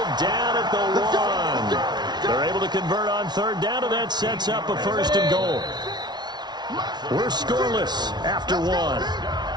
down at the 1. They're able to convert on third down, and that sets up a 1st and goal. We're scoreless after 1.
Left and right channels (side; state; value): left; late; 0.20 ms